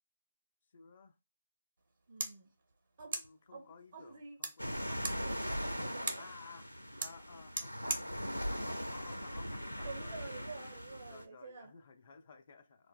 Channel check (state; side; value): inverted; both; correlation -0.89